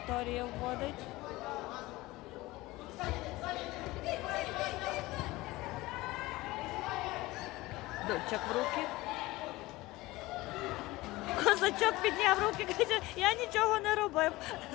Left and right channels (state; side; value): quieter; right; 19.7 dB